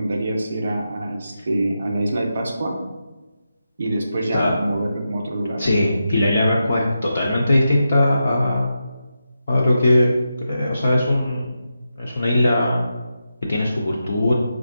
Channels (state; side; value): inverted; both; correlation -0.88